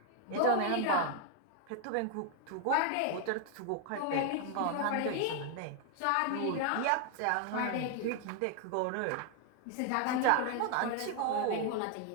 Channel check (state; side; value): different; both; correlation 0.00